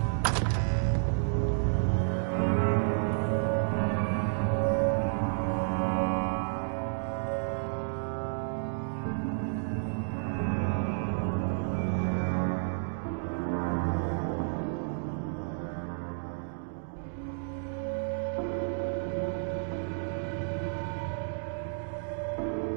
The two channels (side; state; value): left; silent; digital silence